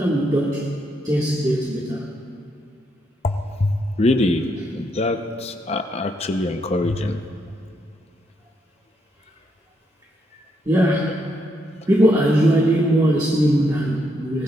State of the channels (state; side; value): normal; both; correlation 0.77